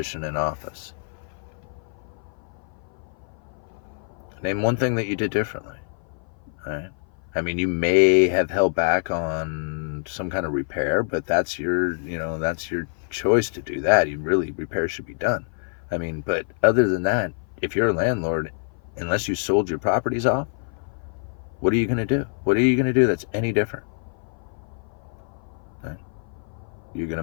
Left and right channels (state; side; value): silent; right; 56 dB below the other